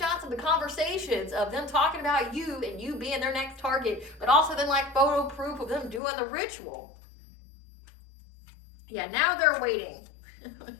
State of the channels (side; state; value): right; drops out; at 6.0 s